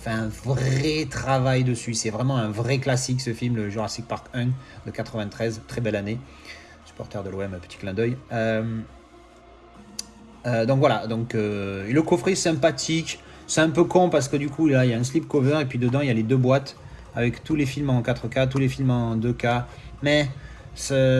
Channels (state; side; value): identical; both; correlation 1.00